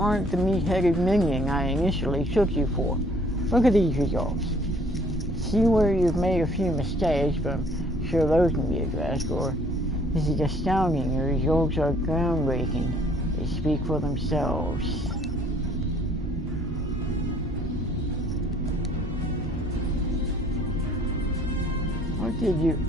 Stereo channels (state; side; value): normal; both; correlation 0.60